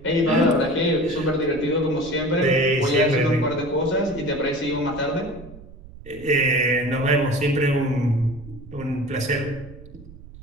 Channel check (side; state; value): right; noise; rumble, 18 dB below the sound